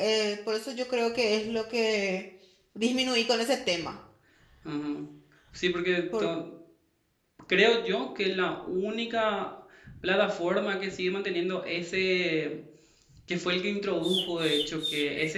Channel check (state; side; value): identical; both; correlation 1.00